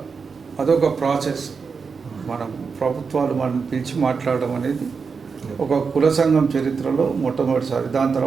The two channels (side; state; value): left; quieter; 5.3 dB